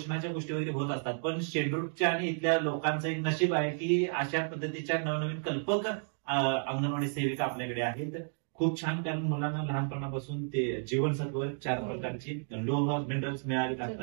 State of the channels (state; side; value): silent; left; 56 dB below the other